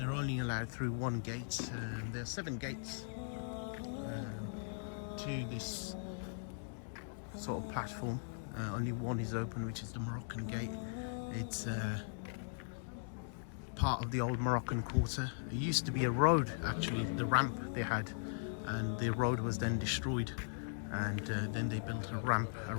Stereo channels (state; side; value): silent; right; digital silence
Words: only allowed through one gate. There are 7 gates to this sort of platform. Only one is open, which is the Moroccan gate. It's part of the old Moroccan quarter. It used to be a road, actually, the ramp they had, and the road was then destroyed, and then they built a ramp, a